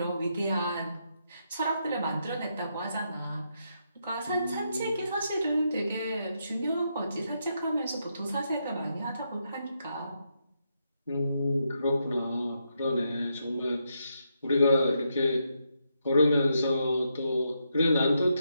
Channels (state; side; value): inverted; both; correlation -0.81